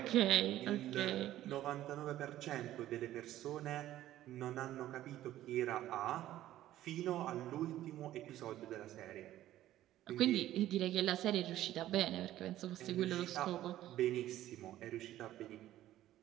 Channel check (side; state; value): left; quieter; 13.7 dB